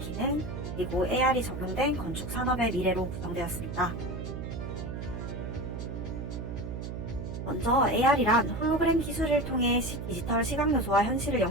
그리고 AR이 적용된 건축 산업의 미래로 구성되었습니다. 먼저 AR이란 홀로그램 기술을 통해 디지털 시각 요소와 현실을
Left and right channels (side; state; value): right; noise; hum, 6 dB below the sound